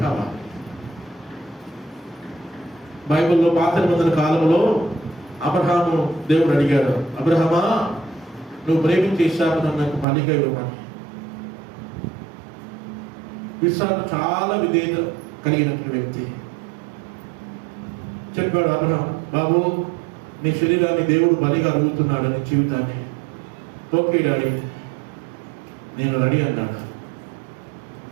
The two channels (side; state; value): left; drops out; at 10.1 s